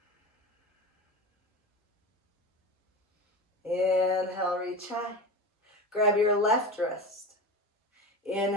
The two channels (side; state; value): both; normal; correlation 0.27